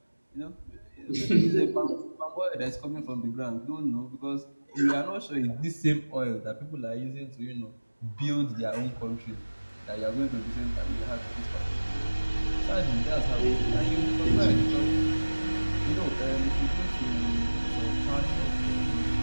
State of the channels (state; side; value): inverted; both; correlation -1.00